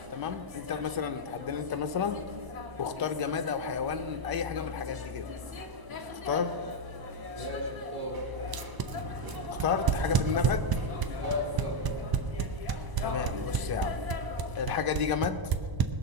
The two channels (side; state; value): left; late; 1.0 ms